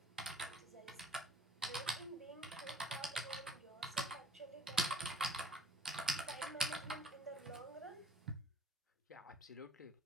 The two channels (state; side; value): normal; both; correlation 0.53